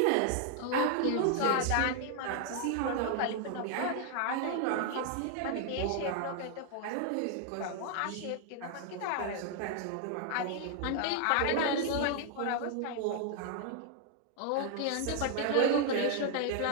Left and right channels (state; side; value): different; both; correlation 0.00